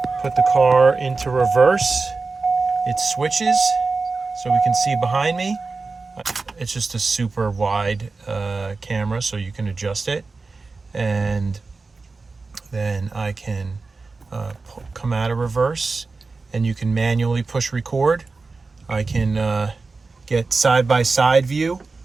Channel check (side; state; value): left; quieter; 4.0 dB